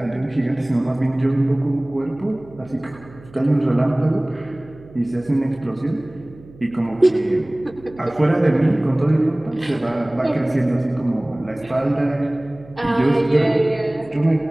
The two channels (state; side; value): noise; right; hum, 22 dB below the sound